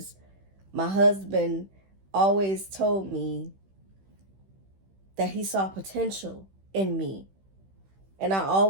my husband always told me that he saw potential in me. And I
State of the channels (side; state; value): left; late; 15 ms